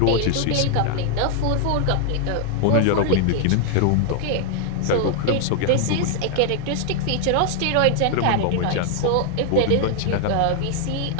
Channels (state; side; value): different; both; correlation 0.00